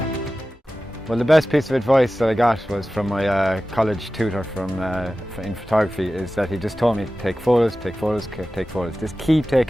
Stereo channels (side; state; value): both; normal; correlation 0.95